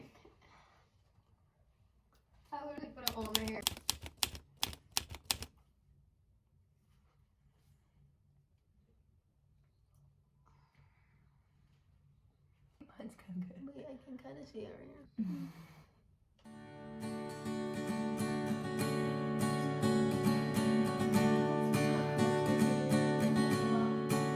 I literally put a hole in my hair. Mine's kind of good. Wait, I can kind of see it right here.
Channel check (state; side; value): identical; both; correlation 1.00